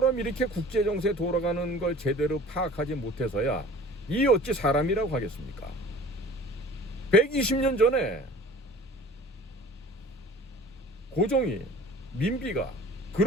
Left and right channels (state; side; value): normal; both; correlation 0.44